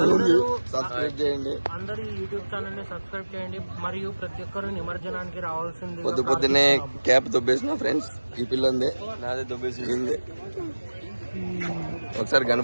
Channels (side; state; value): both; inverted; correlation -1.00